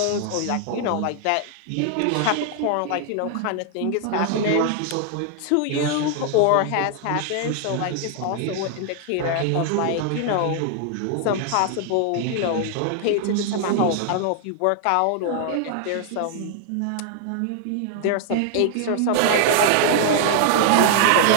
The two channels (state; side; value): different; both; correlation 0.00